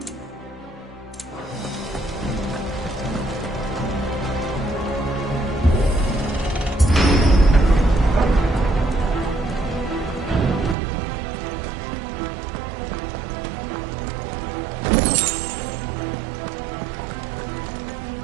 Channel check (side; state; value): left; drops out; at 10.8 s